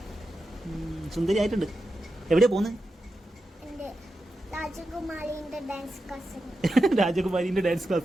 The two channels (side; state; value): both; normal; correlation 0.89